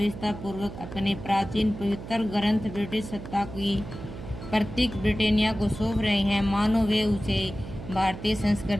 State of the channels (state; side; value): noise; right; hum, 11 dB below the sound